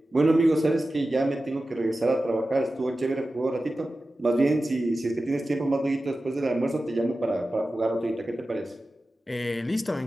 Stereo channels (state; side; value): normal; both; correlation 0.94